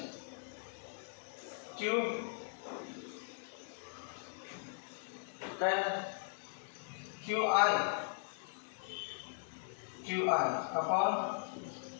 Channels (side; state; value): right; silent; digital silence